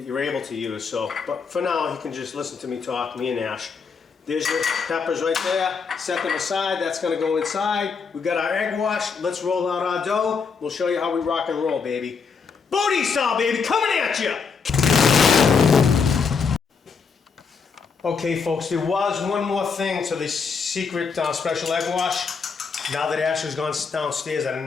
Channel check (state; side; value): quieter; right; 5.6 dB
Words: able to use. So, but for now, you can just listen to me talk, me and Ash. There's your peppers right there. Set them aside. That's going to go inside. We've got our egg wash. Let's roll out our dough. We'll show you how we rock and roll, baby. Booty style, baby, coming at you. Okay, folks, there was one more thing to this secret special egg wash. Now that Ash has gone downstairs, I